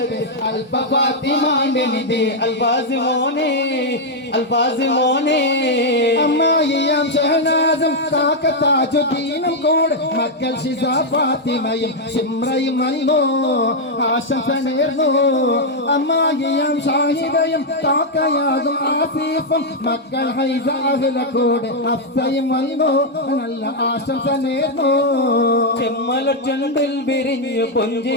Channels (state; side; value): normal; both; correlation -0.01